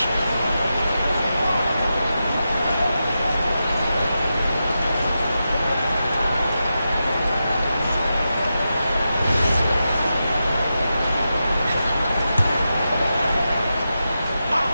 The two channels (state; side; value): inverted; both; correlation -0.90